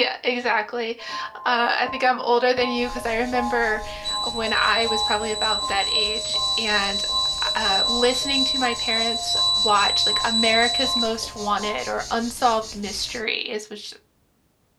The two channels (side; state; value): both; identical; correlation 1.00